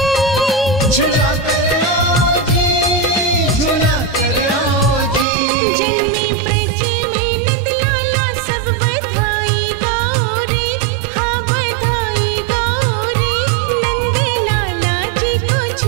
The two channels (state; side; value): drops out; left; at 5.2 s